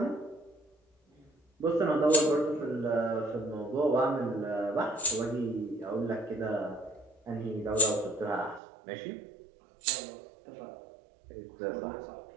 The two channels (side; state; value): left; drops out; at 8.6 s